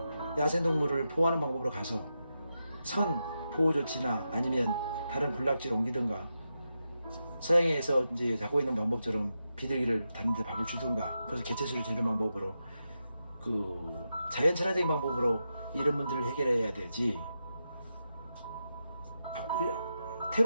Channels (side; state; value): both; inverted; correlation -0.88